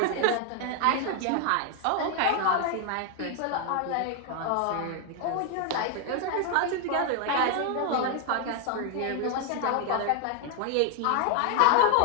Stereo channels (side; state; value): both; different; correlation 0.00